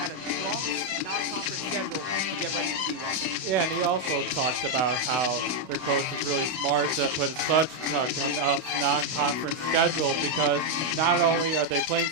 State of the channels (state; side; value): late; left; 32 ms